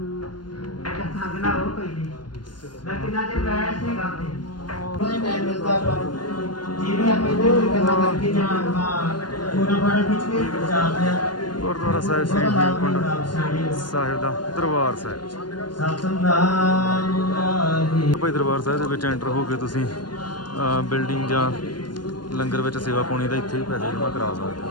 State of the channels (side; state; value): right; late; 0.71 ms